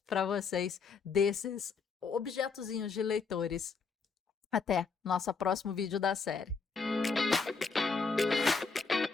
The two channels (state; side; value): quieter; right; 5.0 dB